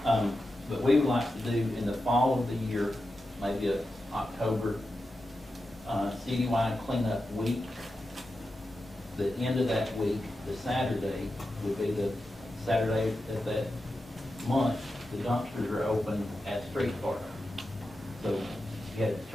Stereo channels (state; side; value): normal; both; correlation 0.90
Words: But we would like to do in the fall of the year, maybe October, citywide cleanup week. The end of that week, the Saturday, would be the Saturday of that month. The dumpsters are open at Street Park. So you had